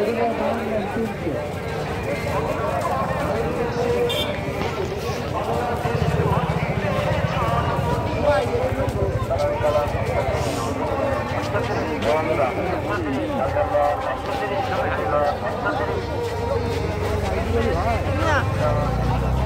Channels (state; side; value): identical; both; correlation 1.00